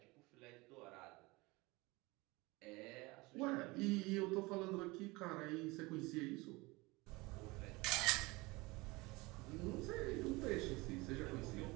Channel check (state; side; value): quieter; left; 23.4 dB